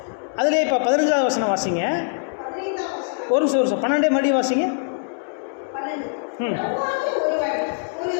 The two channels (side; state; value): right; silent; 64 dB below the other